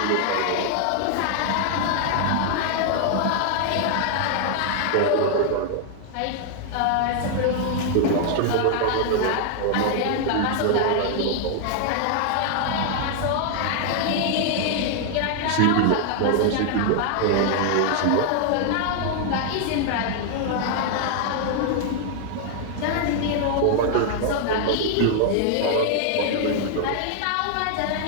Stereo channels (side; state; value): both; different; correlation 0.00